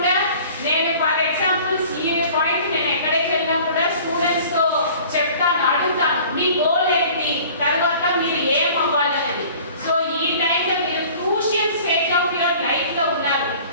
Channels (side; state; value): both; inverted; correlation -0.47